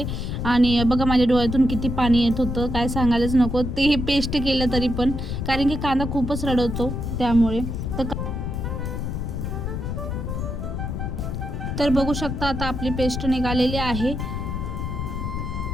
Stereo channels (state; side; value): noise; left; rumble, 3 dB below the sound